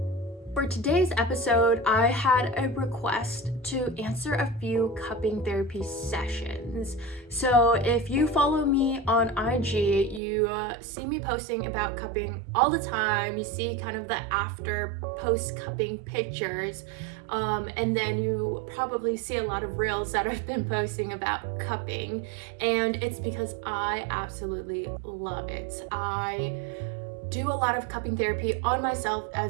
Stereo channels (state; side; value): drops out; left; at 10.2 s